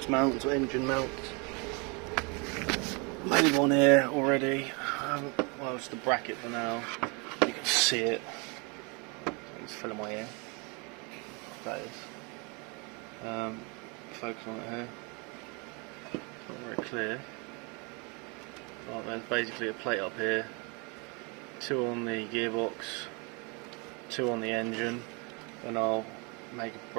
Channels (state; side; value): quieter; left; 31.7 dB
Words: mounts or engine mounts. Made one here already. Well, it's the bracket for now. You can see it. It's filling my ear. That is. Focus on it here. It's not very clear. But there's basically a plate up here. 2 on the gearbox, 2 on the engine, and I'll make a